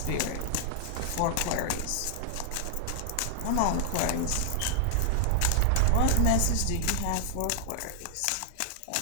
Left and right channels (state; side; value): different; both; correlation 0.00